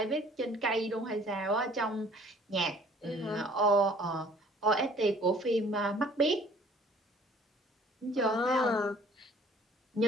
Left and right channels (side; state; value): both; normal; correlation 0.55